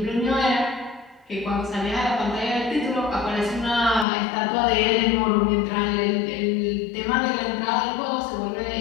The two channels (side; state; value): right; drops out; at 4.0 s